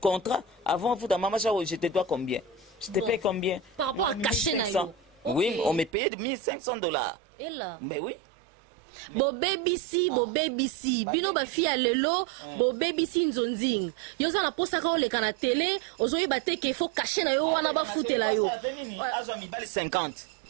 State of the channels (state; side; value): drops out; left; at 5.9 s